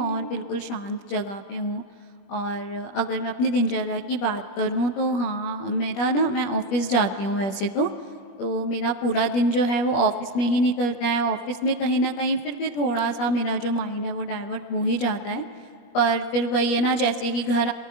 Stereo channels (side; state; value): right; late; 21 ms